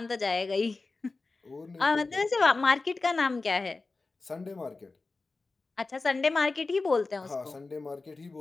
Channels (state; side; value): quieter; right; 3.7 dB